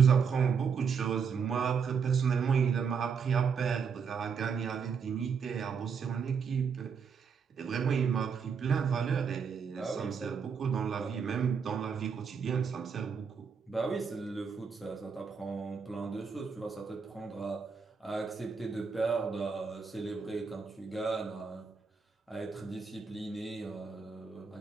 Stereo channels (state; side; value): quieter; left; 6.1 dB